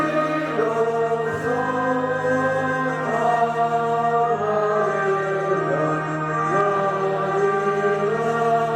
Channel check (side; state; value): both; identical; correlation 1.00